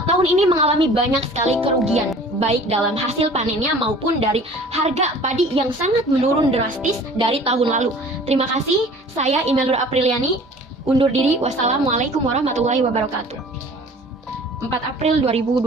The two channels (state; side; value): normal; both; correlation 0.47